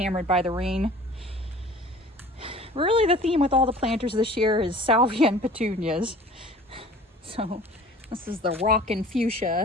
by the rain. Really, the theme with all the planters this year is salvia and petunias. So this is the Rockin'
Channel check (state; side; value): normal; both; correlation 0.46